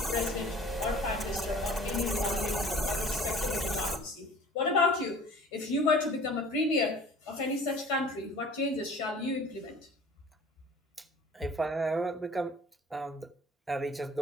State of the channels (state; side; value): normal; both; correlation 0.46